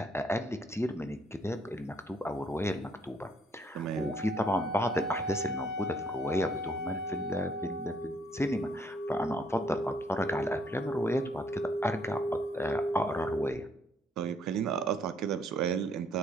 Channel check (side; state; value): both; normal; correlation 0.66